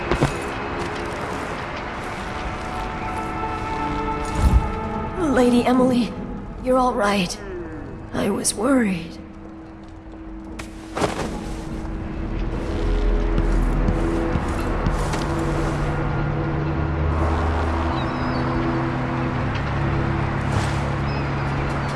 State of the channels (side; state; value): both; identical; correlation 1.00